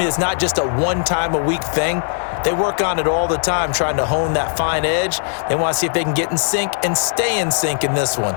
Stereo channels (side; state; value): right; silent; digital silence